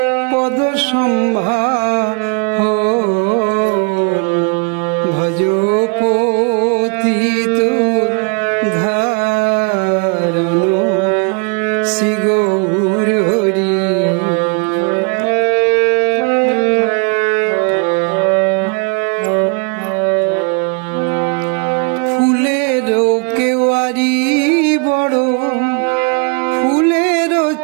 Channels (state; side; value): quieter; left; 34.8 dB